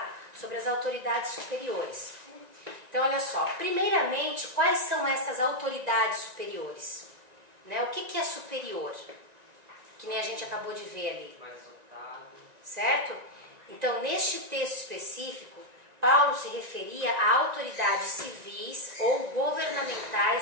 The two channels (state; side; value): late; left; 1.9 ms